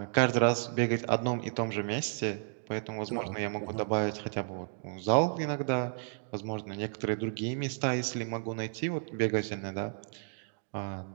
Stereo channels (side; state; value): left; silent; digital silence